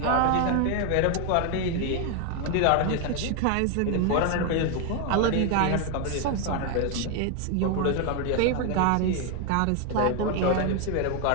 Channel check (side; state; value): both; different; correlation 0.01